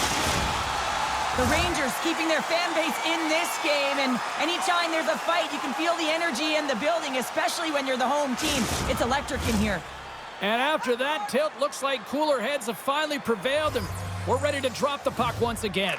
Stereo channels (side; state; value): both; identical; correlation 1.00